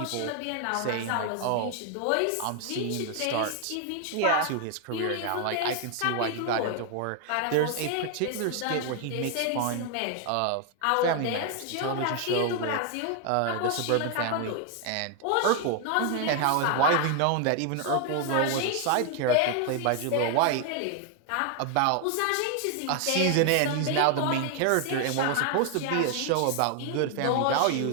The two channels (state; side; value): different; both; correlation 0.00